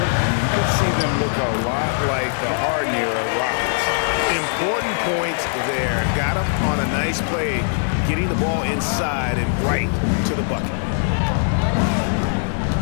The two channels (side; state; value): right; silent; 65 dB below the other